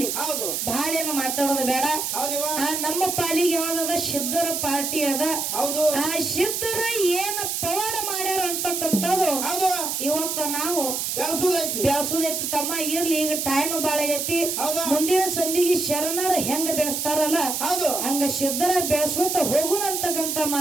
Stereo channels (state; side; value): noise; right; hiss, 1 dB below the sound